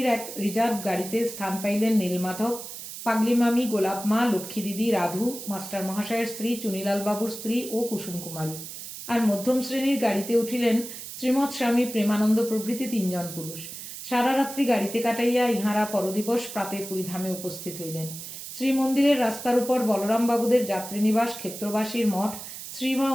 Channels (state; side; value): noise; right; hiss, 10 dB below the sound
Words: এক রিজার্ভ গাড়িতে স্থান পাইলেন নীলমাধব, পাগলিমামি, গোলাপমা, লক্ষ্মী দিদি, রাধু, মাস্টার মহাশয়ের স্ত্রী, চুনিলাল বাবুর স্ত্রী ও কুসুম কুমারী। আর মধ্যম শ্রেণীর গাড়িতে উঠিলেন শ্রীমৎ স্বামী প্রেমানন্দ প্রভৃতি 3 জন পুরুষ। সারা রাত্রি গাড়িতে কাটাইয়া ইহারা পরদিবস প্রাতে পুরীধামে উপস্থিত হইলেন। শ্রীমন্দিরের রাস্তার উপর বলরাম বাবুদের যাত্রীনিবাস ক্ষেত্রবাসীর মঠ শ্রীমা